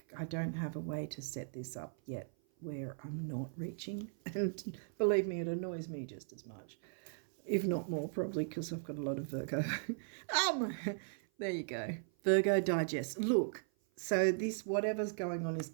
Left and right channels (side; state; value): left; silent; 53 dB below the other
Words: don't have a way to set this up yet where I'm not reaching. And believe me, it annoys me just as much, if not more, probably because I've got a lot of Virgo. There you go. Virgo digest. Look, so this, whatever's going on is